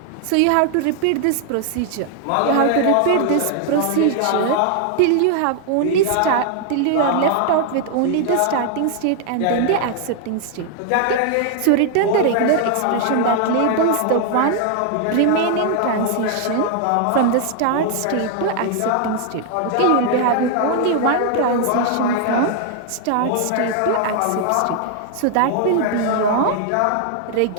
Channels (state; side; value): different; both; correlation 0.00